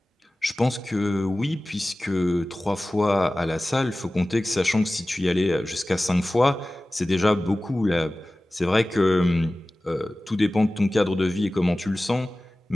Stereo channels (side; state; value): both; normal; correlation 0.97